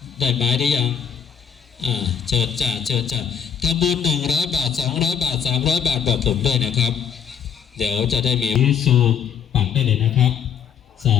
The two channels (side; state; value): right; quieter; 7.9 dB